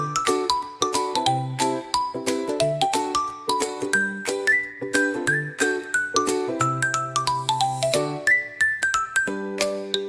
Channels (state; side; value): identical; both; correlation 1.00